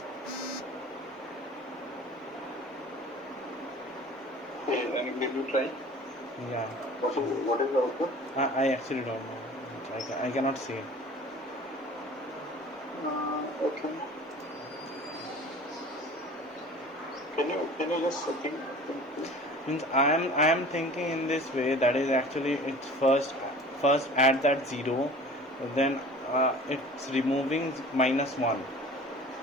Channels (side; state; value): both; normal; correlation 0.43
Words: Okay, and did you try? Yeah. What is the output? I actually don't know. I cannot see it. Okay. Can you just think? Means I am thinking in this way, that is actually it's first add that 0, then it's removing -1.